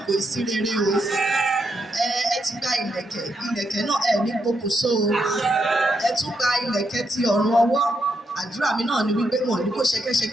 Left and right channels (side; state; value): both; normal; correlation 0.80